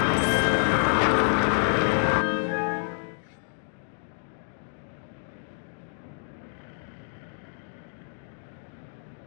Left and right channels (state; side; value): silent; right; 59 dB below the other